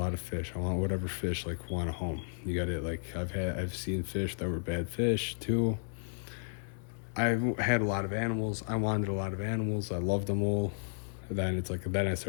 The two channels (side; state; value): right; silent; 56 dB below the other